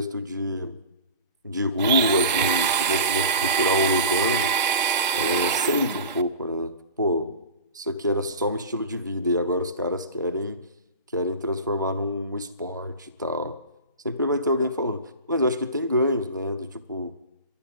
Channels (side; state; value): both; inverted; correlation -0.33